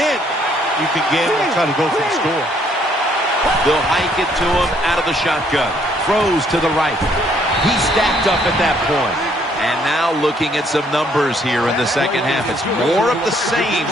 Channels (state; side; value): normal; both; correlation 0.66